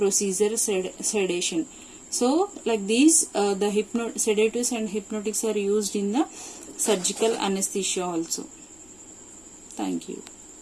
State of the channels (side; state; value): left; noise; rumble, 29 dB below the sound